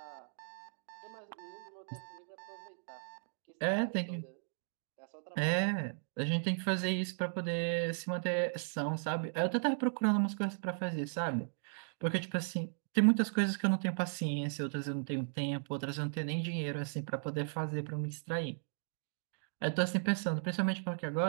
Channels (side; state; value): left; silent; digital silence